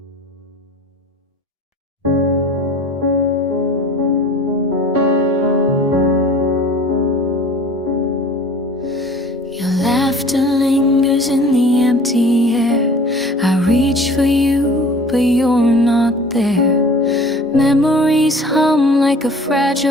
Your laughter lingers in the empty air. I reach for you, but you're not there. Memories hum like a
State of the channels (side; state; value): both; normal; correlation 0.45